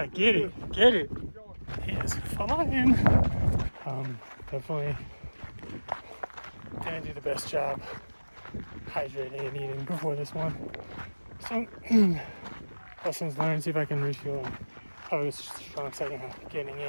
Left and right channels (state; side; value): inverted; both; correlation -1.00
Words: get it, get it. He is flying. Definitely didn't do the best job hydrating and eating before this one. So, lessons learned, see if I can refuel and have a strong second half. Getting in